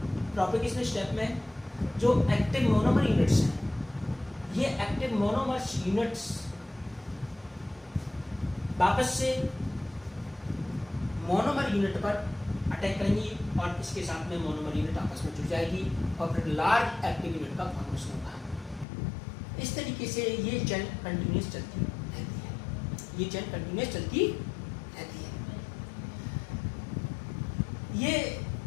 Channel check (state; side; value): drops out; right; at 18.9 s